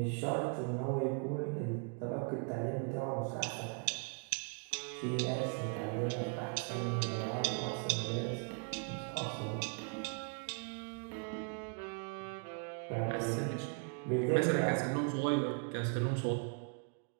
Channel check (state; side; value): quieter; left; 39.9 dB